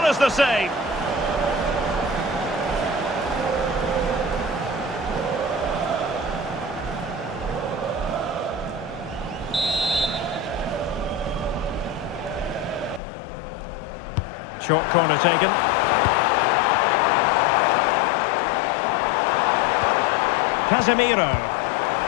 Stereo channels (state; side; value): drops out; right; at 13.0 s